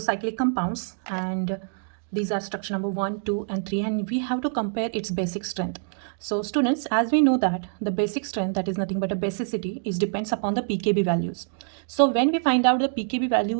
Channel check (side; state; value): left; silent; digital silence